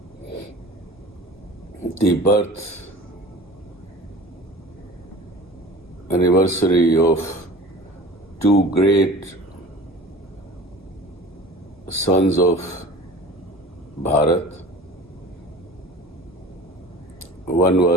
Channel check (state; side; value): normal; both; correlation 0.41